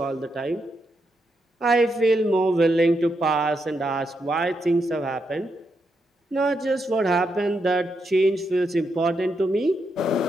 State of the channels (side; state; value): both; normal; correlation 0.82